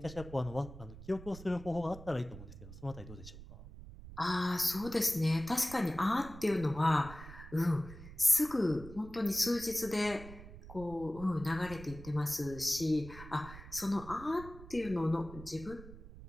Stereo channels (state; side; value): noise; right; rumble, 15 dB below the sound